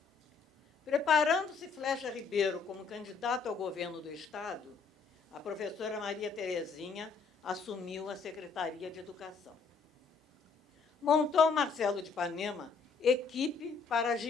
Preparando-se Flecha Ribeiro como candidato ao governo do Estado, a professora Maria Terezinha assumiu a Secretaria de Educação. Montou Marcelo de Ipanema equipe para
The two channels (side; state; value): right; quieter; 5.2 dB